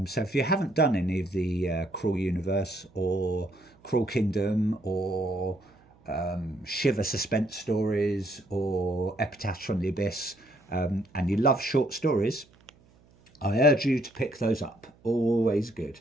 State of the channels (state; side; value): noise; right; hum, 30 dB below the sound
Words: So if you haven't done any of the Cruel Universe or Cruel Kingdom or Shiver suspense stories or Epitaphs from the Abyss, and you love short stories, I urge you to pick those up. Always good.